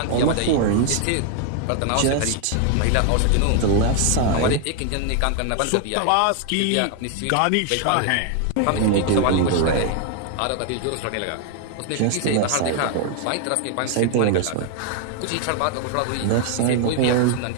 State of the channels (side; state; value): both; different; correlation 0.00